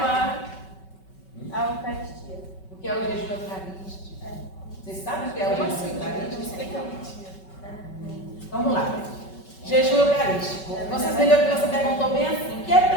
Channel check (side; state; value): right; late; 5.3 ms